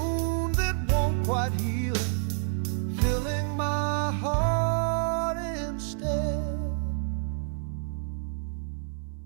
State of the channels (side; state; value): left; silent; 59 dB below the other